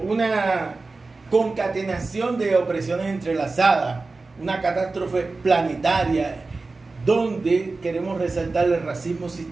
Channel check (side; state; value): left; quieter; 3.7 dB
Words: concatenación de opresiones entrelazadas, una catástrofe planetaria, donde queremos resaltar el racismo